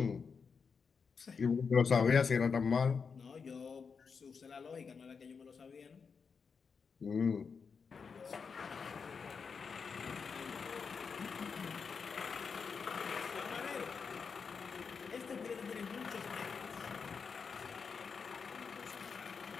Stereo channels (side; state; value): right; quieter; 5.6 dB